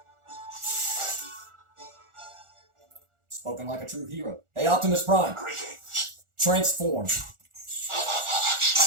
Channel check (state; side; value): late; left; 1.4 ms